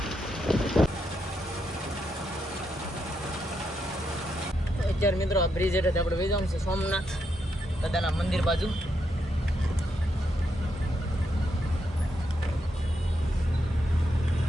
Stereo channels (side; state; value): both; normal; correlation 0.81